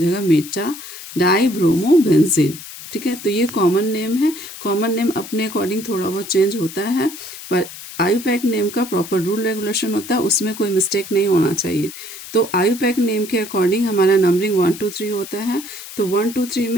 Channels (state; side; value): noise; left; hiss, 13 dB below the sound